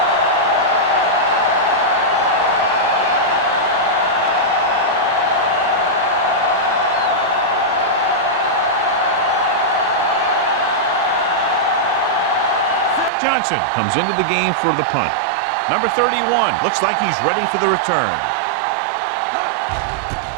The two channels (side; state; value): left; drops out; at 13.1 s